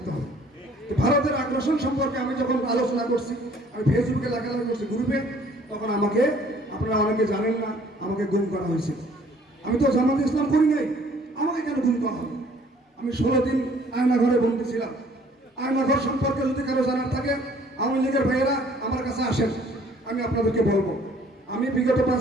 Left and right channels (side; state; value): both; normal; correlation 0.58